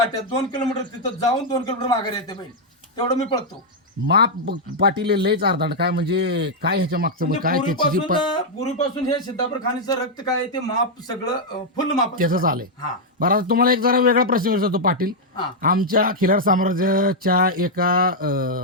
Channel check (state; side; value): normal; both; correlation -0.03